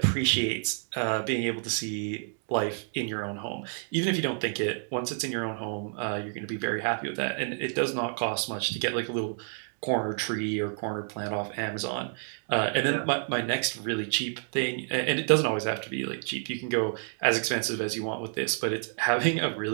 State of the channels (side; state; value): left; silent; 58 dB below the other